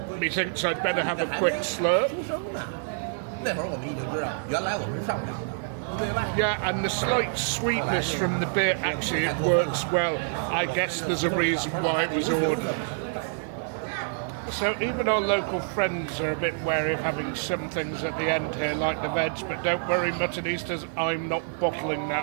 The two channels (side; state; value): left; silent; 60 dB below the other